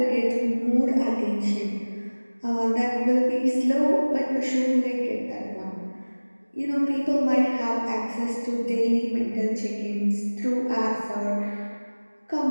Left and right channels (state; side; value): inverted; both; correlation -1.00